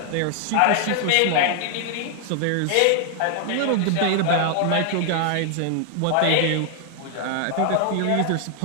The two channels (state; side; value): different; both; correlation 0.00